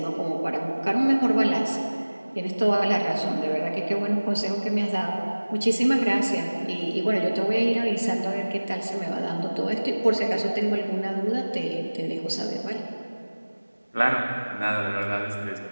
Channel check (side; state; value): both; inverted; correlation -1.00